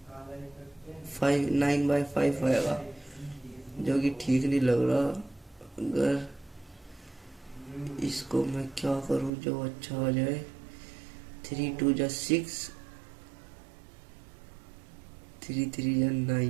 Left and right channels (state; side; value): drops out; left; at 9.3 s